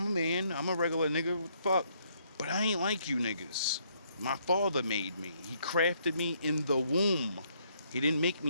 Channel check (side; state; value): both; inverted; correlation -0.70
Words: a man. I'm a regular nigga. What the fuck? But I ain't like you niggas. My Father made me. He crafted me in the womb. He didn't make